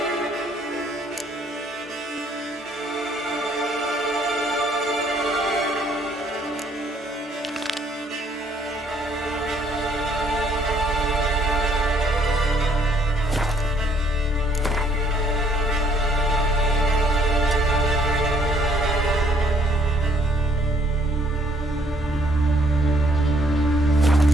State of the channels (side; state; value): both; normal; correlation 0.65